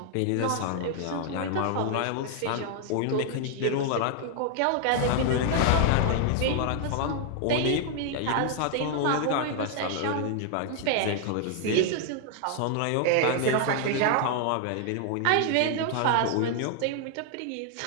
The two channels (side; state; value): both; different; correlation 0.00